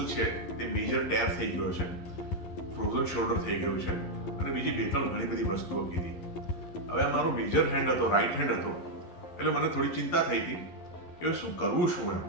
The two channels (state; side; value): late; right; 11 ms